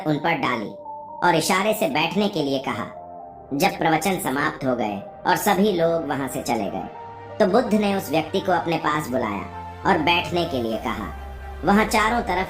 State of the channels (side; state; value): both; identical; correlation 1.00